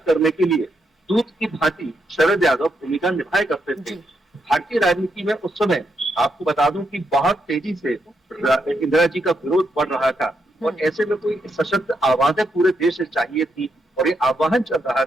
करने के लिए दूत की भांति शरद यादव भूमिका निभाया करते थे। भारतीय राजनीति में उस समय आपको बता दूं कि बहुत तेजी से इंदिरा जी का विरोध बढ़ रहा था और ऐसे में कोई सशक्त आवाजें पूरे देश से चाहिए थी। और ये आह्वान चल रहा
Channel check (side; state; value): both; normal; correlation 0.80